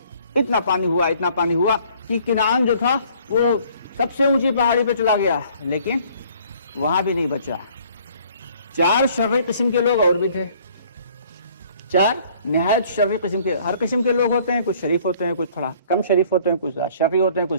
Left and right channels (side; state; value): both; inverted; correlation -0.57